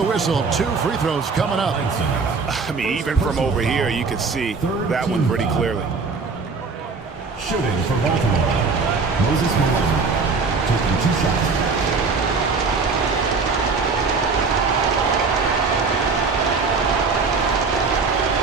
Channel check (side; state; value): left; quieter; 4.5 dB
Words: whistle. 2 free throws coming up. I mean, even from over here, you can see that one pretty clearly. Shooting for Baltimore, Moses Malone, taking 2 shots.